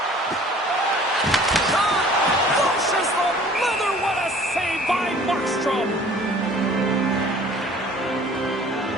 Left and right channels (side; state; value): both; normal; correlation 0.50